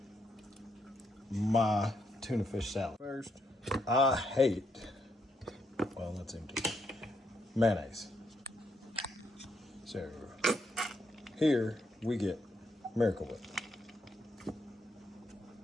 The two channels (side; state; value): both; normal; correlation 0.77